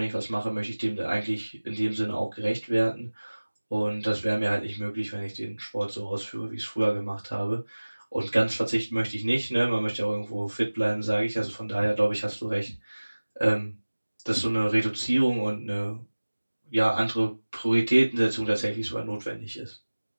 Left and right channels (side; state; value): both; inverted; correlation -1.00